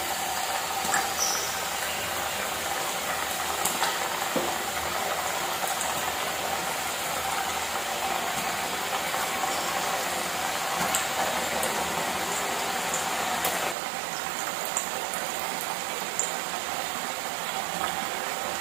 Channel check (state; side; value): drops out; left; at 13.8 s